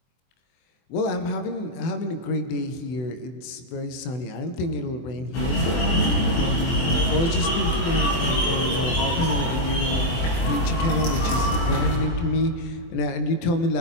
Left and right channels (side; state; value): right; late; 23 ms